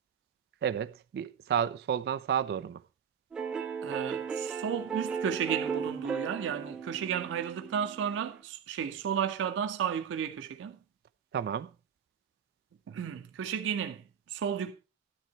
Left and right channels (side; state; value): left; quieter; 7.6 dB